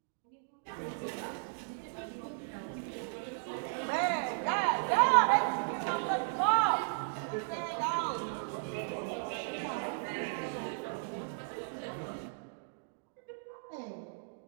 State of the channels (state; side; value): silent; left; digital silence